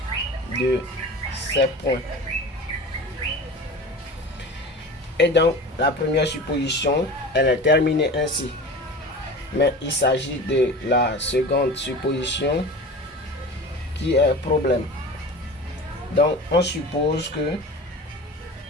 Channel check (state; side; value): normal; both; correlation 0.35